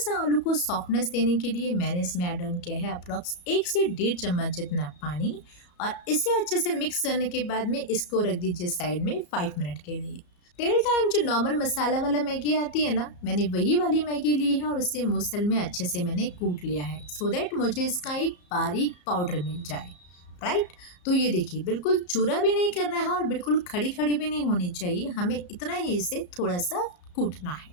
आलू को सॉफ्टनेस देने के लिए मैंने इसमें ऐड ऑन किया है अप्रॉक्स 1 से 1.5 चम्मच जितना पानी। और इसे अच्छे से मिक्स करने के बाद में इसको रख दीजिए साइड में 5 मिनट के लिए। टिल टाइम जो नॉर्मल मसाला वाला मैगी आती है ना, मैंने वही वाली मैगी ली है और उसे मूसल में अच्छे से मैंने कूट लिया है सो दैट मुझे इसका एक बारीक पाउडर मिल जाए। राइट, तो ये देखिए बिल्कुल चूरा भी नहीं करना है और बिल्कुल खड़ी खड़ी भी नहीं होनी चाहिए, हमें इतना ही इसे थोड़ा सा कूटना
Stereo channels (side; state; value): right; late; 34 ms